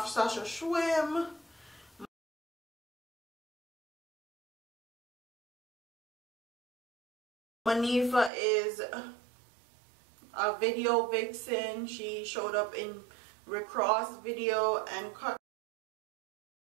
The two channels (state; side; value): drops out; left; at 8.3 s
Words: Sasha Schwim. Manifa is a video vixen. She showed up in Rick Ross video and